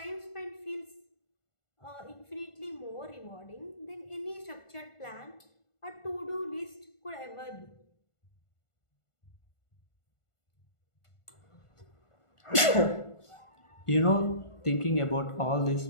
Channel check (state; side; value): late; right; 1.4 ms